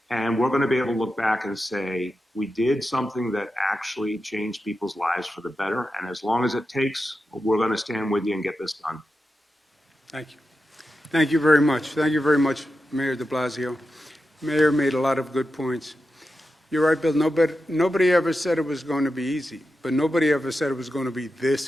And we're going to be able to look back and say, we did something that actually changed people's lives for the better. And as long as it takes, we're going to stand with you and get this done. Thank you. Thank you very much. Thank you very much, Mayor de Blasio. Mayor made a lot of good points. You're right, Bill. Nobody ever said it was going to be easy, but nobody ever said it was going to be this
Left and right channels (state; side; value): normal; both; correlation 0.90